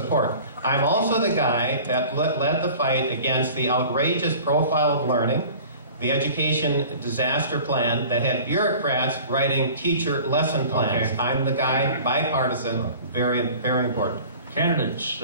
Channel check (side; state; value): both; inverted; correlation -0.43